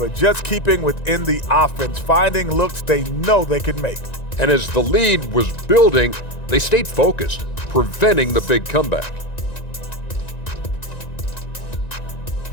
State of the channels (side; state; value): right; late; 1.9 ms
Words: just keeping within the offense, finding looks they know they can make. And as the lead was building, they stayed focused, preventing the big comeback.